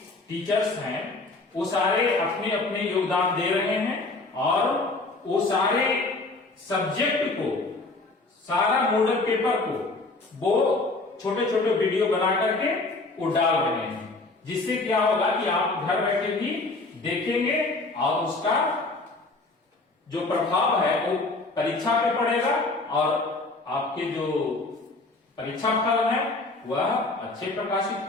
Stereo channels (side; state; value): right; quieter; 3.3 dB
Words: टीचर्स हैं वो सारे अपने अपने योगदान दे रहे हैं और वो सारे सब्जेक्ट को, सारा मॉडल पेपर को वो छोटे छोटे वीडियो बना करके वो डाल रहे हैं, जिससे क्या होगा कि आप घर बैठे भी देखेंगे और उसका जो प्रभाव है वो परीक्षा पे पड़ेगा और आपके जो परीक्षा फल है वह अच्छे प्रकाशित